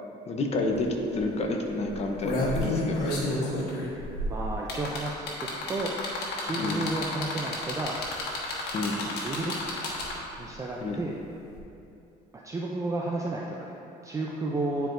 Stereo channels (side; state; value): both; normal; correlation 0.48